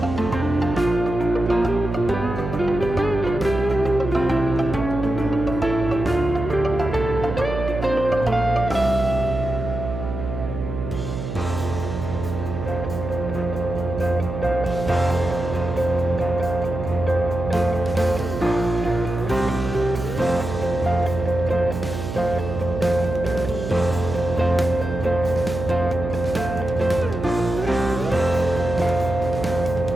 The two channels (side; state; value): right; noise; hum, 6 dB below the sound